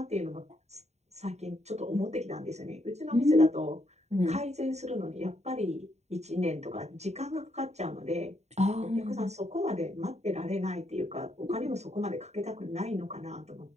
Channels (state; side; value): late; left; 0.32 ms